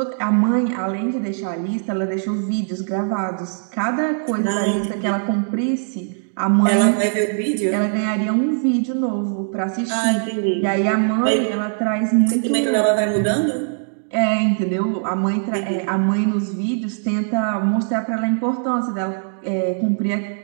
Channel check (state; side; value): silent; left; digital silence